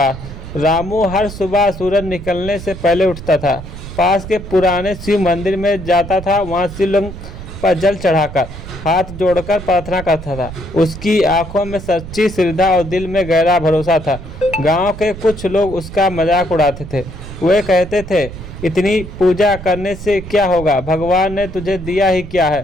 रामू हर सुबह सूरज निकलने से पहले उठता था, पास के पुराने शिव मंदिर में जाता था। वहाँ शिवलिंग पर जल चढ़ाकर हाथ जोड़कर प्रार्थना करता था। उसकी आंखों में सच्ची श्रद्धा और दिल में गहरा भरोसा था। गांव के कुछ लोग उसका मजाक उड़ाते थे। वे कहते थे, इतनी पूजा करने से क्या होगा, भगवान ने तुझे दिया ही क्या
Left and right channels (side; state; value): right; noise; rumble, 12 dB below the sound